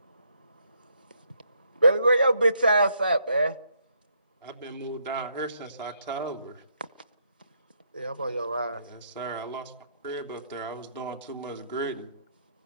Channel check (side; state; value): both; inverted; correlation -0.73